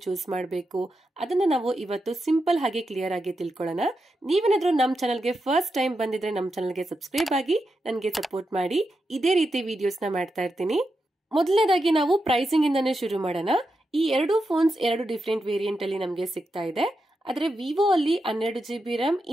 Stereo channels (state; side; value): normal; both; correlation 0.87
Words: ಚೂಸ್ ಮಾಡಬೇಕು ಅದನ್ನ ನಾವು ಇವತ್ತು ಸಿಂಪಲ್ ಹಾಗೆ ಕ್ಲಿಯರ್ ಆಗಿ ತಿಳ್ಕೊಳ್ಳೋಣ. ನೀವೇನಾದ್ರೂ ನಮ್ಮ ಚಾನಲ್ಗೆ ಫಸ್ಟ್ ಟೈಮ್ ಬಂದಿದ್ರೆ ನಮ್ಮ ಚಾನಲ್ಗೆ ಸಬ್ಸ್ಕ್ರೈಬ್ ಆಗಿ ನನಗೆ ಸಪೋರ್ಟ್ ಮಾಡಿ. ಇದೇ ರೀತಿ ವಿಡಿಯೋಸ್ ನ ಮಾಡ್ತಾ ಇರ್ತೀನಿ. ಮೊದಲನೇದಾಗಿ ನಾವು ಪ್ರೈಸಿಂಗ್ ಇಂದಾನೆ ಶುರು ಮಾಡೋಣ. ಈ ಎರಡು ಫೋನ್ಸ್ ಎರಡು ಡಿಫರೆಂಟ್ ವೇರಿಯಂಟ್ ಅಲ್ಲಿ ನಮಗೆ ಸಿಗ್ತಾ ಇದೆ. ಆದ್ರೆ ವಿವೋ ಅಲ್ಲಿ 12 GB RAM